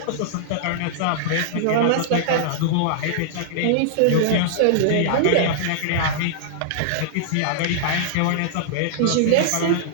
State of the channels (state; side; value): different; both; correlation -0.02